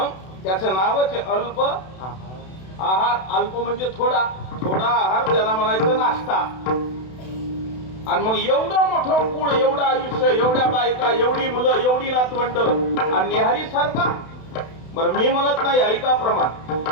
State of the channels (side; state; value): right; late; 32 ms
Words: त्याचं नावच आहे अल्प आहार. अल्प म्हणजे थोडा, थोडा आहार, त्याला म्हणायचं नाश्ता. आणि मग एवढं मोठं कुळ, एवढं आयुष्य, एवढ्या बायका, एवढी मुलं, एवढी नातवंड, आणि न्याहारी सारखा. बरं, मी म्हणत नाही, ऐका प्रमाण.